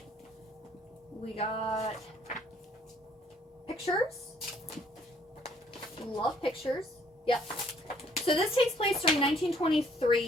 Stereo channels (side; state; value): both; normal; correlation 0.63